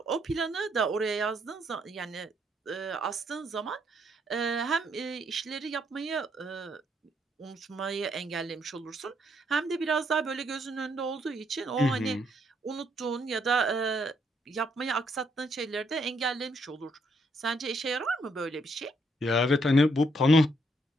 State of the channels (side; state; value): both; normal; correlation 0.73